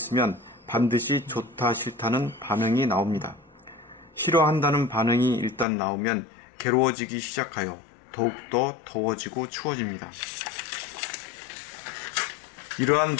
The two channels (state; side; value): drops out; right; at 5.7 s